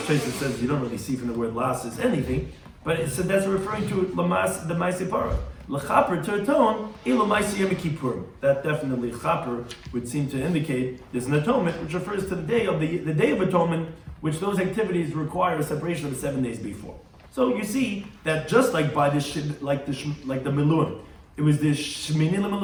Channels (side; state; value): both; identical; correlation 1.00